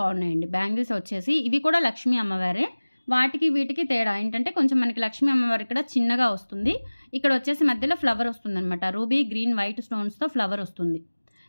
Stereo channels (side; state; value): both; inverted; correlation -1.00